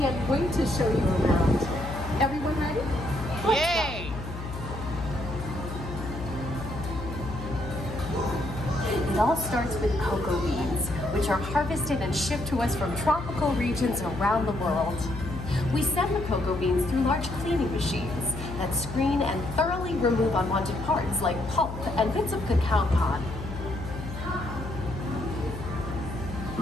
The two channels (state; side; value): noise; left; hum, 9 dB below the sound